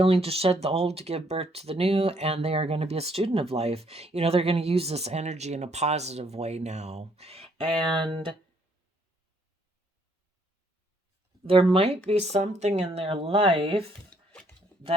to shed the old to give birth to the new, and they are going to be a student of life. You know, they're going to use this energy in a positive way now. And there might be something in their life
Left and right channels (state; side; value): normal; both; correlation 0.68